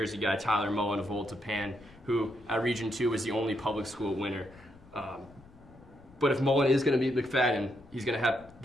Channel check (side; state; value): left; noise; rumble, 25 dB below the sound